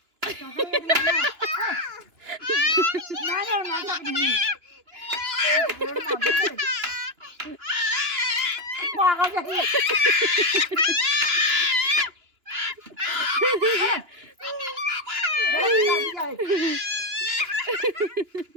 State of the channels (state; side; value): late; left; 2.9 ms